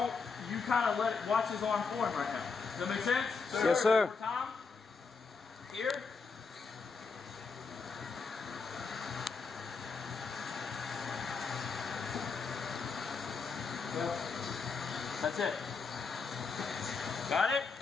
you kind of let it, watch his arm form right now. Does that make sense? So yes, sir. One more time. Here. That's it. Got it?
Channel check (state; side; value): quieter; right; 5.0 dB